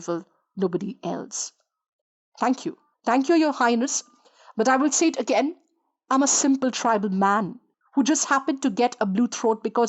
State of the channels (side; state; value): both; identical; correlation 1.00